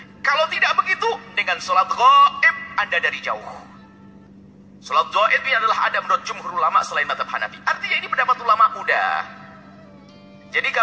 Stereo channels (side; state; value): both; identical; correlation 1.00